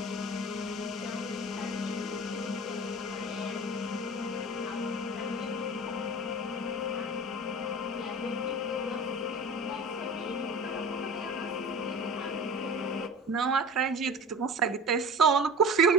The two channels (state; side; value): normal; both; correlation 0.37